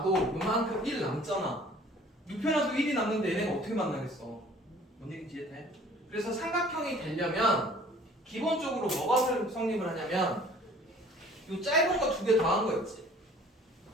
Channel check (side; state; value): both; normal; correlation 0.52